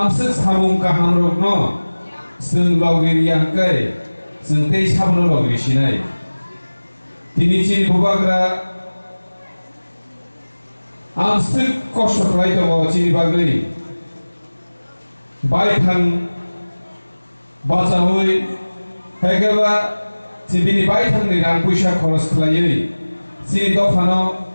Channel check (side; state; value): both; inverted; correlation -1.00